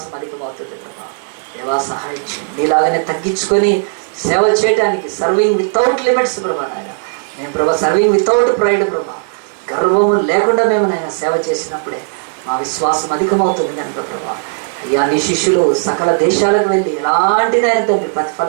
అధికమవుతుంది ప్రభా. దేవా సహాయించు. నీలాగానే తగ్గించుకొని సేవ చేయడానికి సర్వింగ్ వితౌట్ లిమిట్స్ ప్రభా నాయన. మేము ప్రభా సర్వింగ్ వితౌట్ ప్రైడ్ ప్రభా, గర్వము లేకుండా మేము నాయన సేవ చేసినప్పుడే మా విశ్వాసం అధికమవుతుంది కనుక ప్రభా. అయ్యా, నీ శిష్యులు సకల దేశాలకు వెళ్ళి ఎలాంటి నాయన తండ్రి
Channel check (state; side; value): silent; left; digital silence